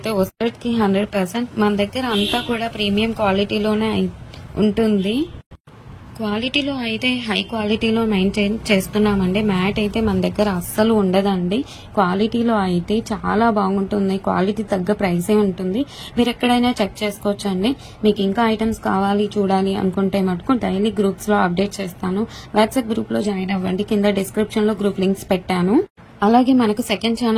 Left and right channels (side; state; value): both; identical; correlation 1.00